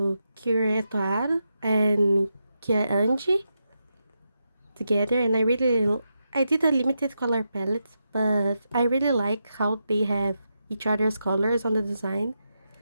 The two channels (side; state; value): both; inverted; correlation -0.86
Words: Kira Etoaro and Kia Anji together, and I did a limited color palette, but I really like how they have each other's colors on the design.